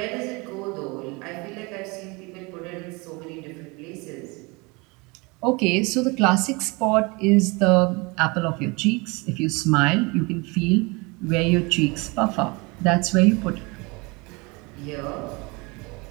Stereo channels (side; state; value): left; quieter; 27.0 dB